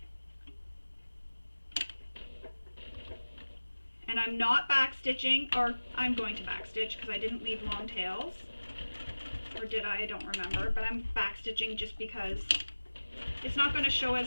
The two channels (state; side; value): inverted; both; correlation -1.00